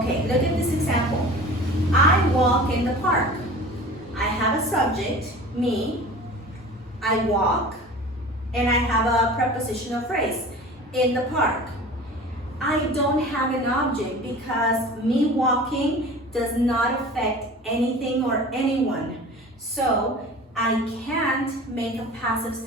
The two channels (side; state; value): both; normal; correlation 0.39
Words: look at this example. I walk in the park. I have a subject, me, I walk, and I have a prepositional phrase, in the park. I don't have an object because me walking does not affect anything or anyone. So I can't make a passive